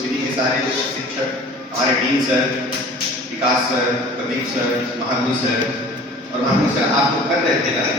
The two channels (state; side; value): normal; both; correlation 0.45